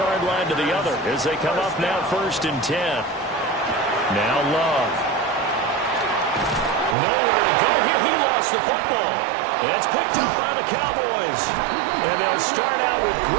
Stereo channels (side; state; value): left; drops out; at 7.0 s